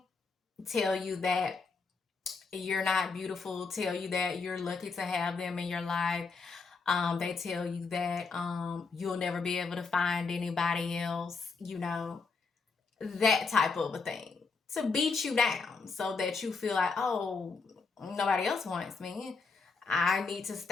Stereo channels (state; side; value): quieter; right; 4.6 dB